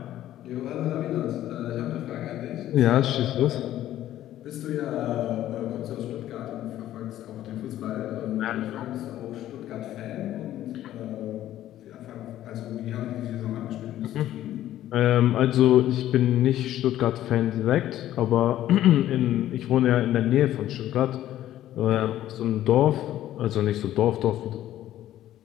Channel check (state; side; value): quieter; right; 13.0 dB